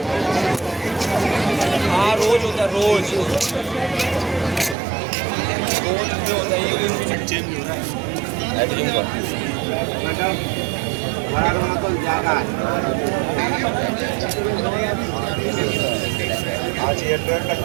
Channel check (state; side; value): drops out; left; at 4.8 s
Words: हाँ, रोज होता है, रोज होता है, ये चेंज हो रहा